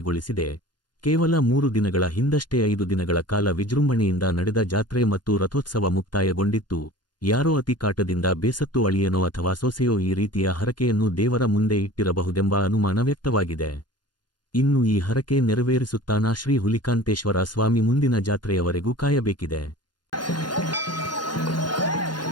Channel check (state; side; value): late; right; 0.71 ms